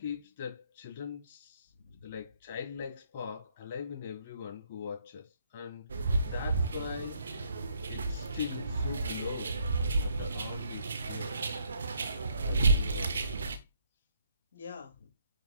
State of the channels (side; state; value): both; inverted; correlation -0.69